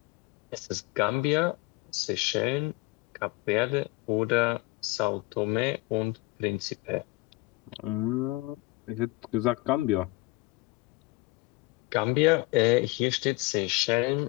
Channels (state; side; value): quieter; right; 22.2 dB